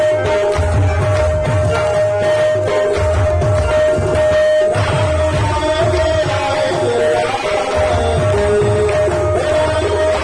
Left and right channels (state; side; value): identical; both; correlation 1.00